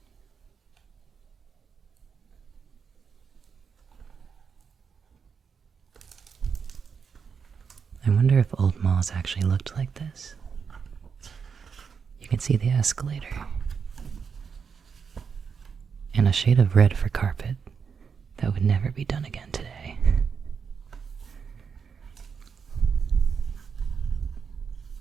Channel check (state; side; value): quieter; left; 6.2 dB